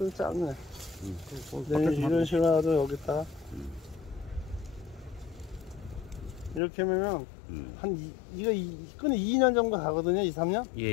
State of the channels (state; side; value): drops out; right; at 6.6 s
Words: 짧네. 이런 식으로 해도 여기다가. 이렇게 하면은 이거 끈이 2년 정도 가거든요. 2, 3년.